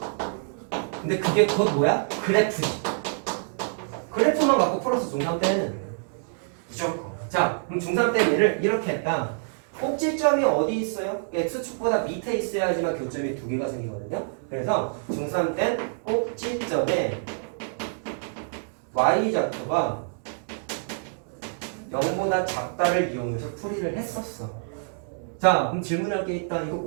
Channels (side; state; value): left; silent; digital silence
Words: 근데 그게 곧 뭐야? 그래프지. 그래프만 갖고 풀어서 중3 때는 무조건. 자, 그럼 중3 때 얘를 이렇게 했다. 꼭지점이 어디 있어요? X축보다 밑에 있어야지만 교점이 두 개가 생기거든요. 그래서 중3 때 꼭지점에 Y좌표가 0보다 작다를 이용해서 풀이를 했었어. 자, 그럼 질문할 게 있다. 이거